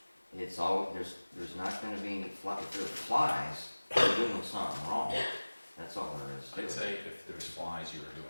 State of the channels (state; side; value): inverted; both; correlation -1.00